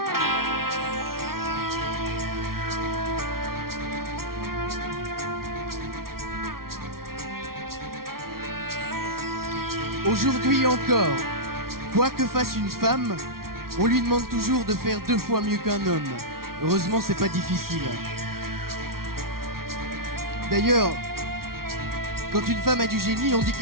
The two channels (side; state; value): left; late; 0.93 ms